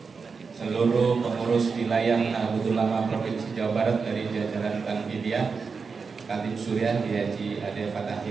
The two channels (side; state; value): left; quieter; 5.1 dB